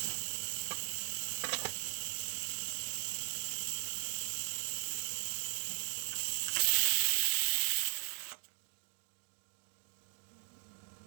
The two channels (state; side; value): silent; left; digital silence